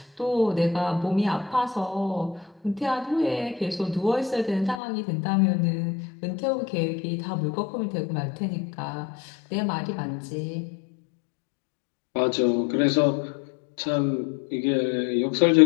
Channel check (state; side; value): drops out; right; at 4.8 s